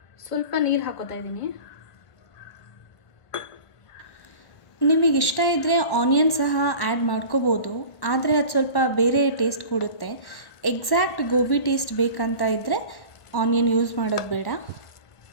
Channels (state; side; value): late; right; 1.1 ms